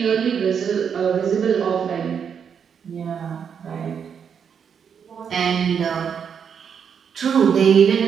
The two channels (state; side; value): quieter; left; 7.3 dB